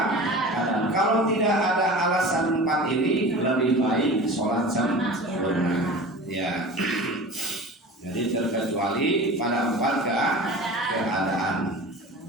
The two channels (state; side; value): normal; both; correlation 0.36